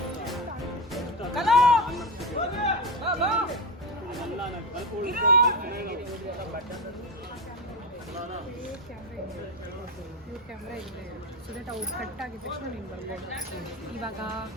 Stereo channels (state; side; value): normal; both; correlation 0.17